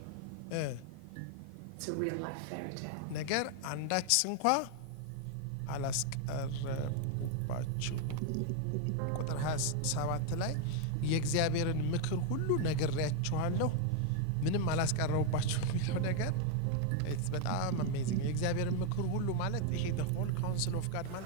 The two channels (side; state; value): both; different; correlation 0.00